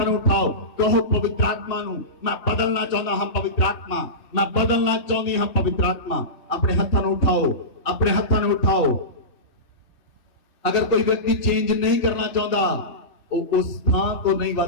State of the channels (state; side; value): late; right; 3.2 ms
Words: नूं उठाओ। कहो पवित्र आत्मा नूं, मैं बदलना चाहुंदा हां पवित्र आत्मा, मैं बदलना चाहुंदी हां पवित्र आत्मा। अपने हत्थां नूं उठाओ, अपने हत्थां नूं उठाओ। अगर कोई व्यक्ति चेंज नहीं करना चाहता, वो उस स्थान को नहीं